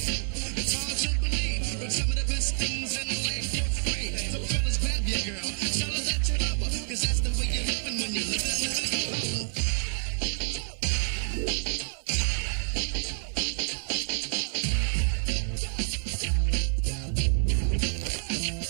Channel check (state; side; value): silent; left; 57 dB below the other